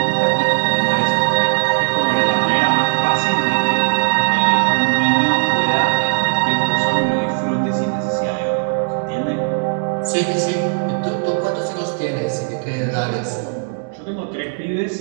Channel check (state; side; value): silent; left; digital silence